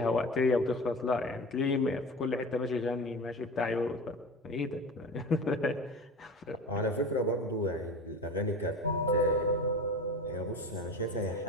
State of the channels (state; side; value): normal; both; correlation 0.33